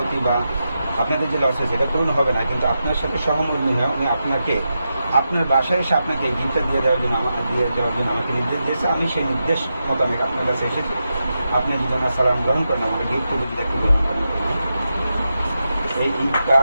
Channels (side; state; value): both; inverted; correlation -0.88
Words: বা আপনাদের যে লস হয়েছে এটা পূরণ হবে না, কিন্তু আপনার সাথে সহমর্মী হয়ে উনি আপনাকে আপনার বাসায় এসে আপনাকে এই গিফটটা দিয়ে যাওয়ার জন্য আমাকে নির্দেশ দিয়েছে। আমি সেই নির্দেশ মোতাবেক আপনার কাছে এসেছি। আপনি যদি আমার সালাম গ্রহণ করেন, আমাকে গিফট করে যদি একটু গ্রহণ করেন। এই ঈদ